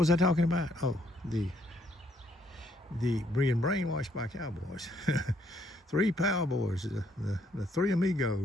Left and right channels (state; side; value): normal; both; correlation 0.70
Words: I talking about? Oh, the being brainwashed by cowboys. Three cowboys, the three